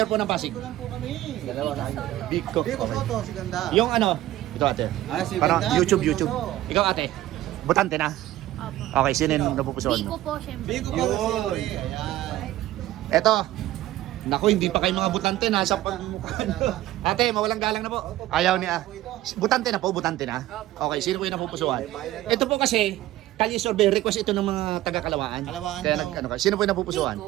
po ng Pasig. Ito lang po kami. Dalawa na. Biko. Biko, Soto, si Ganda. Yung ano, ito ate. Ah, si Parang Ganda, YouTube. Biko Soto. Ikaw ate. Butante na. Opo. Okay, sino yung napupusuan Biko mo? po, syempre. Biko, Yun. Ayan. Eto. Naku, hindi pa kayo mga butante. Nasa pagmukha. Ate, mawalang galang na po. Ayaw niya. Butante na po, butante na. Okay, sino po yung napupusuan? Ito po kasi, Kalye survey, request ito ng mga taga-Kalawaan. Kalawaan Kaya daw. ano ka? Sino po yung napupusuan?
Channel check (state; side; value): quieter; left; 15.1 dB